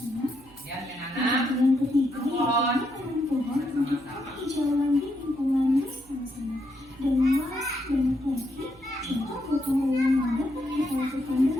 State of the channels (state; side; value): noise; right; hum, 25 dB below the sound